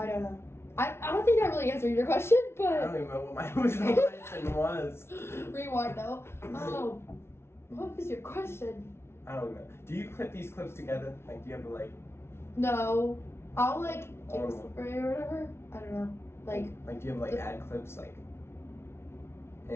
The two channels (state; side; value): late; right; 0.12 ms